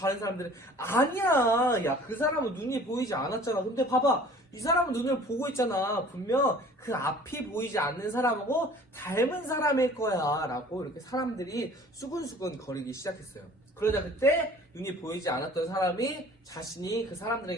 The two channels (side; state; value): both; normal; correlation 0.49